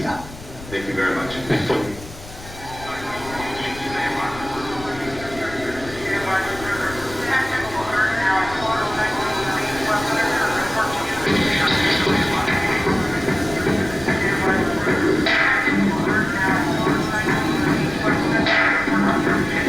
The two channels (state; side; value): noise; left; rumble, 16 dB below the sound